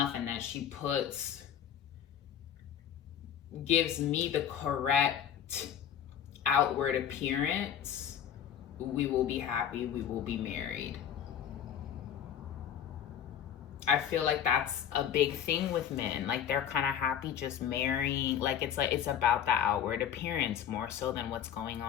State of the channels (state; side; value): quieter; right; 9.2 dB